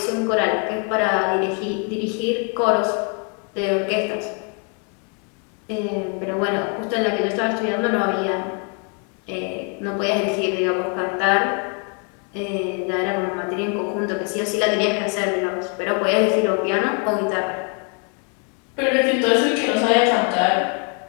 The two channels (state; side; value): quieter; right; 38.9 dB